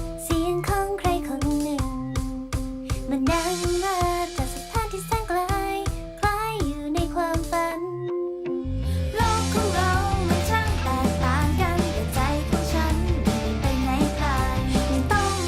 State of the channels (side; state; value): both; identical; correlation 1.00